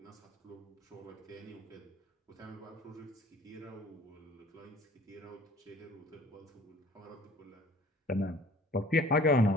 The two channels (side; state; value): both; normal; correlation 0.50